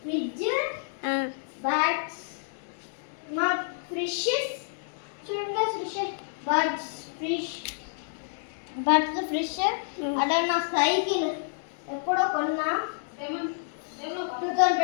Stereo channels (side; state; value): right; silent; digital silence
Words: ఫ్రిడ్జ్, బ్యాగ్స్, మా ఫిషెస్ చూడండి. ఫిష్ అలా నా సైకిల్ ఎప్పుడో కొన్నా